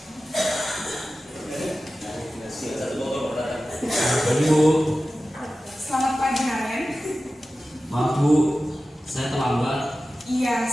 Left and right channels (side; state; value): both; normal; correlation 0.95